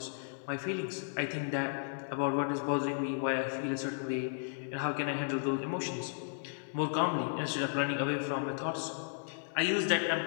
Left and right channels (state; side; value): silent; right; 55 dB below the other